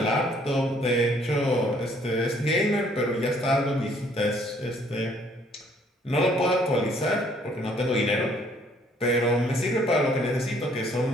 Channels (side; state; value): both; normal; correlation 0.63